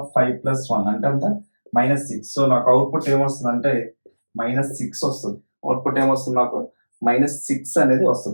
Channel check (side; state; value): both; inverted; correlation -1.00